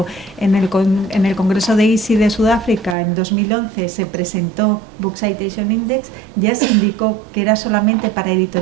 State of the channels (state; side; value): drops out; left; at 3.0 s